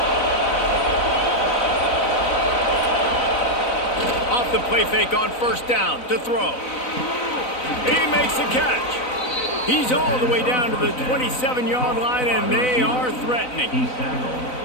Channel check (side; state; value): right; late; 4.0 ms